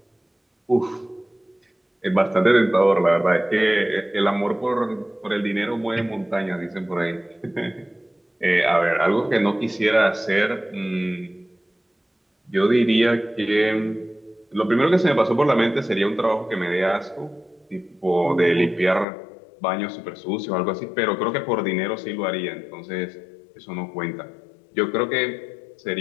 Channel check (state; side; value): drops out; right; at 19.1 s